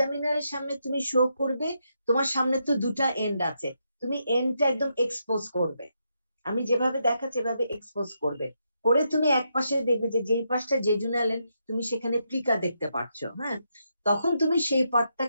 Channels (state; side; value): inverted; both; correlation -0.81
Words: সামনে তুমি শো করবে, তোমার সামনে তো দুটা এন্ড আছে, তুমি এন্ডটা একদম এক্সপোজ করবে, আমি যেভাবে দেখাচ্ছি এভাবে এক্সপোজ করবে, করে তুমি এক পাশে দেখবে যে যেই পাশটা জেজুনাল এন্ড তুমি সেখানে প্লিকা দেখতে পাচ্ছো, হ্যাঁ। তখন তুমি সেই